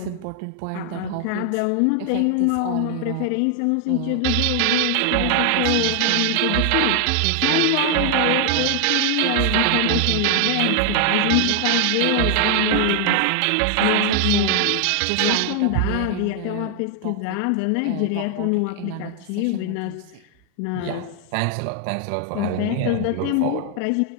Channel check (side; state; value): both; different; correlation 0.00